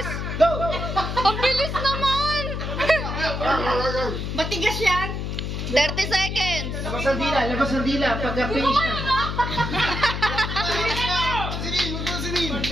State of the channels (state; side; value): noise; left; hum, 4 dB below the sound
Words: Go! Ang bilis naman! Matigas yan. 30 seconds! Labas ang dila. Pagka-finish na.